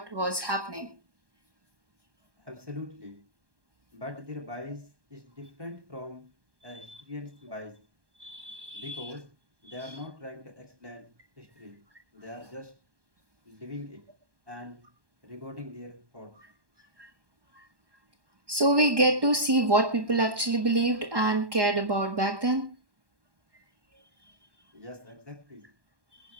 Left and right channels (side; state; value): left; late; 1.2 ms